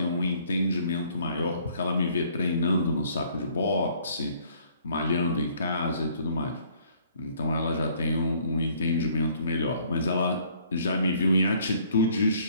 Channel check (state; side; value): inverted; both; correlation -0.61